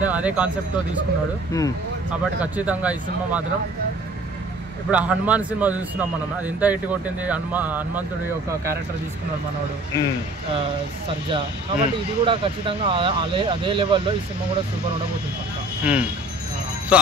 అదే కాన్సెప్ట్ తో తీసుకున్నాడు. కాబట్టి ఖచ్చితంగా ఈ సినిమా మాత్రం ఇప్పుడు హనుమాన్ సినిమా చూస్తున్నాం మనం, అది ఎంత హిట్ కొట్టింది. హనుమంతుడి యొక్క క్యారెక్టర్ తీసుకున్నాడు మనోడు సర్జా. కాబట్టి ఇది కూడా ఖచ్చితంగా అదే లెవెల్లో ఈ సినిమా కూడా సూపర్ ఉండబోతుంది పక్కా. సో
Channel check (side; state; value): both; normal; correlation 0.49